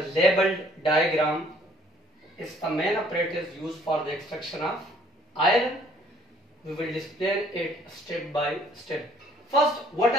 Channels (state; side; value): normal; both; correlation 0.60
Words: labeled diagram is the main apparatus used for the extraction of iron. We will display it step by step. First, what